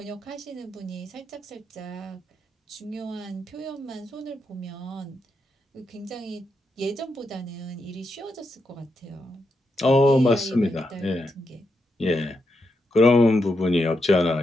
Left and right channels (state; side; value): normal; both; correlation 0.83